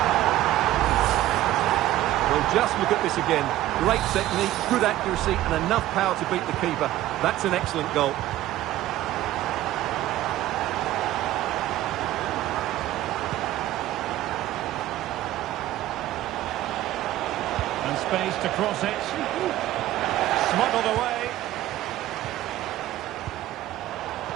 Well, just look at this again. Great technique, good accuracy, and enough power to beat the keeper. That's an excellent goal. And space to cross it. Smuggled away.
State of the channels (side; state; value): left; quieter; 14.7 dB